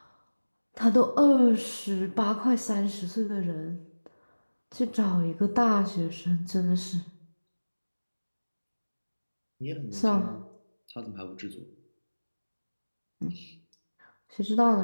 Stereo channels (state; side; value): inverted; both; correlation -1.00